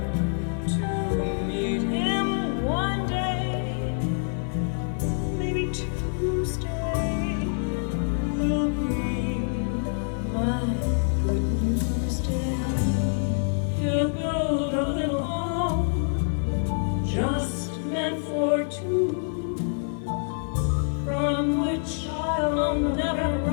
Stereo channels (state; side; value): silent; right; digital silence